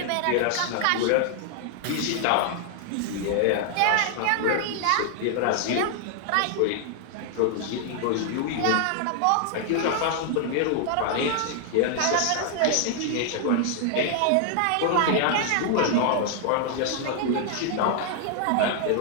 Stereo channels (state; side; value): different; both; correlation 0.00